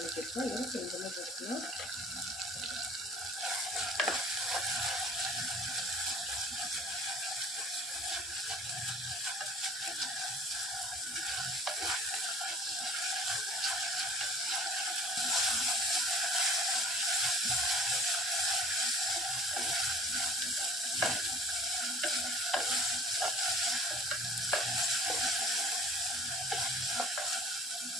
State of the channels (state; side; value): normal; both; correlation 0.48